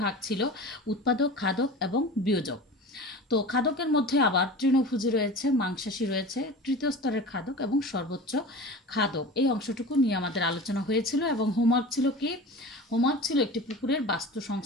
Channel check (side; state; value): both; normal; correlation 0.34